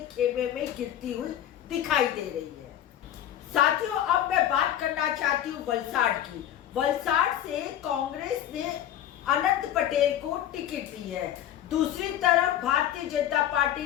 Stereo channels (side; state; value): right; quieter; 11.3 dB